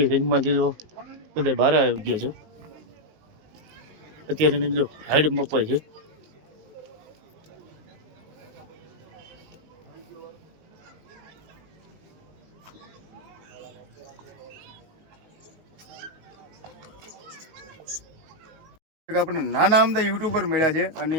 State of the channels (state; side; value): late; left; 19 ms